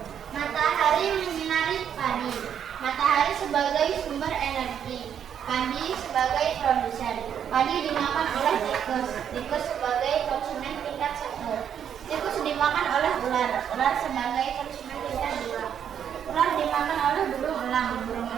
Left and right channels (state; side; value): quieter; left; 8.7 dB